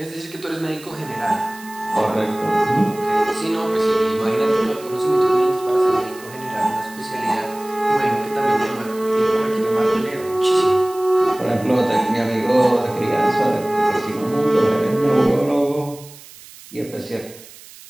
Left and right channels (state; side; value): noise; right; hiss, 20 dB below the sound